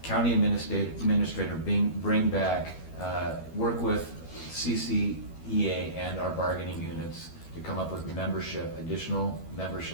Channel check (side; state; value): right; late; 12 ms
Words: county administrator bring back, work with CCEA and our bargaining units to come up with additional